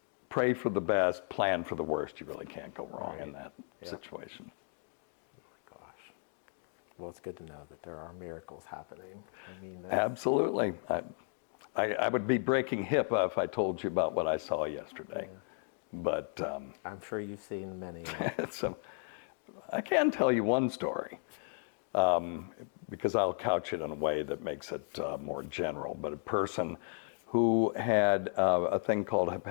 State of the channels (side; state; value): right; silent; 55 dB below the other